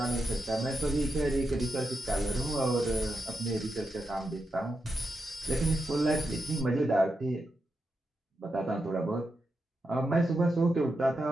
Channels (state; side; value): normal; both; correlation 0.87